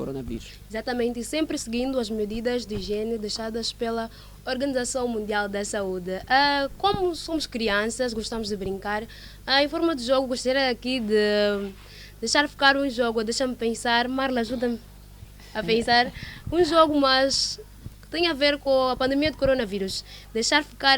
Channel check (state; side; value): identical; both; correlation 1.00